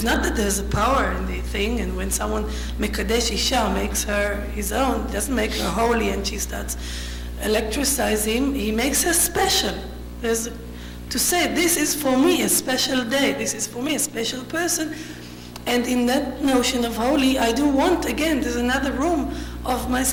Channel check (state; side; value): identical; both; correlation 1.00